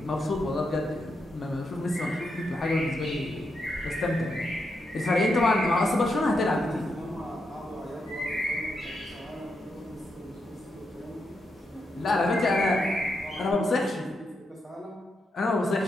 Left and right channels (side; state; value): both; normal; correlation 0.83